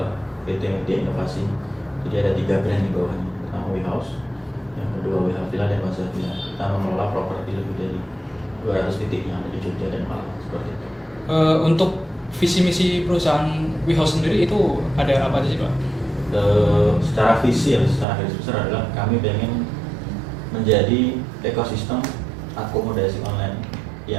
PT Media Inovasi. Jadi ada 3 brand di bawahnya. Pertama WeHouse, yang kedua WeHouse Villa dan Plaza Villa. Kita mengelola properti lebih dari 200 titik yang ada di Jogja dan Malang seperti itu. Untuk visi misi perusahaan WeHouse sendiri itu ada apa aja sih Pak? Secara visi ya, secara garis besar adalah kami ingin menjadi ekosistem akomodasi online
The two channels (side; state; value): left; drops out; at 18.1 s